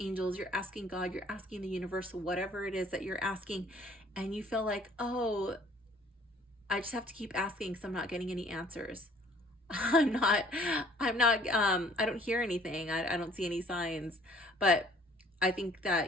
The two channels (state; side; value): normal; both; correlation 0.56